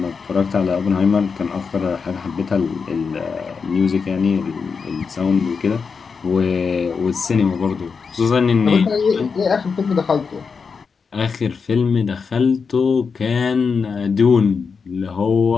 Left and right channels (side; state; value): right; quieter; 5.4 dB